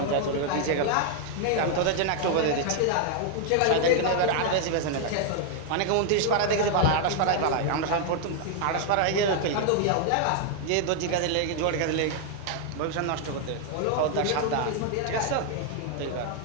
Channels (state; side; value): different; both; correlation 0.00